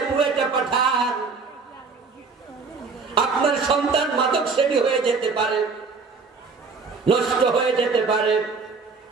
বুয়েটে পাঠান, আপনার সন্তান মাদক সেবী হয়ে যেতে পারে, নষ্ট হয়ে যেতে পারে।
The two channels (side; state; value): left; quieter; 4.6 dB